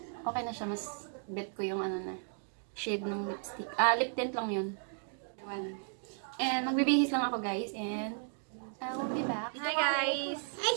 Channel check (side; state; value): left; silent; 55 dB below the other